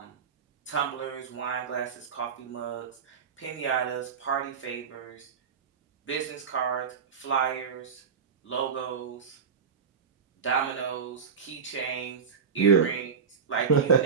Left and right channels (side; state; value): left; quieter; 6.4 dB